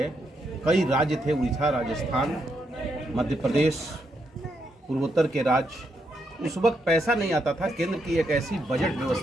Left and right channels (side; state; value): both; normal; correlation 0.79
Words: कई राज्य थे, उड़ीसा, राजस्थान, मध्य प्रदेश, पूर्वोत्तर के राज्य, उस वक्त पैसा नहीं आता था। केंद्र की एक ऐसी बजट